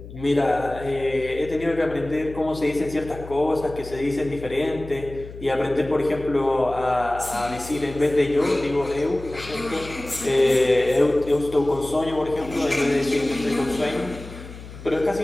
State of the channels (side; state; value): left; noise; hum, 14 dB below the sound